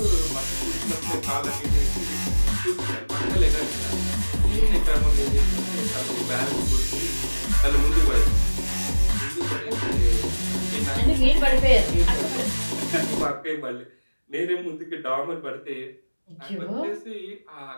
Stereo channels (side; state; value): both; inverted; correlation -1.00